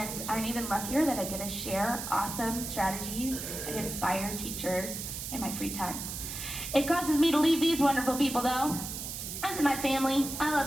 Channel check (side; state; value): right; noise; hiss, 6 dB below the sound